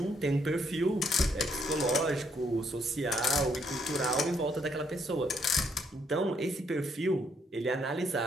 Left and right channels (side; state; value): both; normal; correlation 0.72